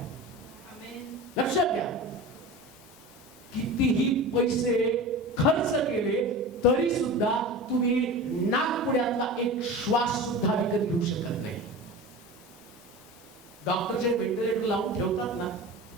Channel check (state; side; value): normal; both; correlation 0.32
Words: लक्षात घ्या, कितीही पैसे खर्च केले तरी सुद्धा तुम्ही नाकपुड्यातला एक श्वास सुद्धा विकत घेऊ शकत नाही. डॉक्टर जे व्हेंटिलेटर लावून ठेवतात ना,